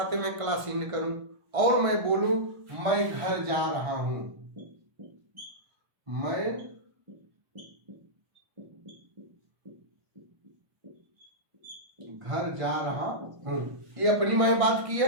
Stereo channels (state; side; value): late; left; 1.3 ms